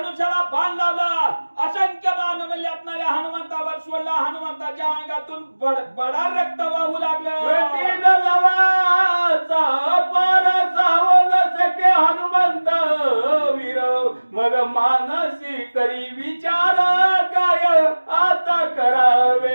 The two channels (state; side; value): inverted; both; correlation -1.00